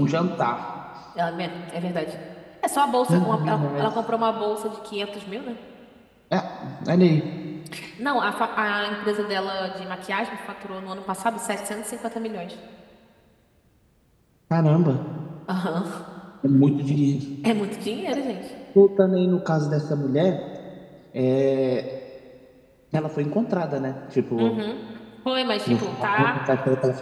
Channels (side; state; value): both; identical; correlation 1.00